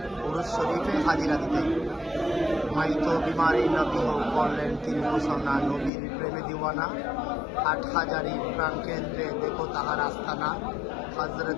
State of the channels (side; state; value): right; drops out; at 5.9 s